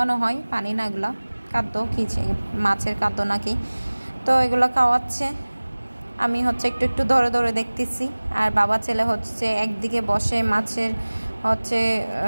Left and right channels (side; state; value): both; inverted; correlation -1.00